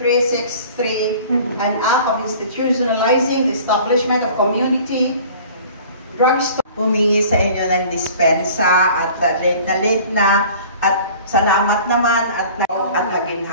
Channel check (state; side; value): inverted; both; correlation -0.46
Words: an act of institutionalizing the establishment of community drugstore. Humingi sa inyo ng dispensa at late na at salamat naman at